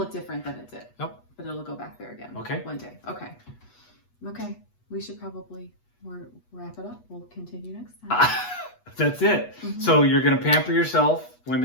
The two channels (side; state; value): right; late; 8.2 ms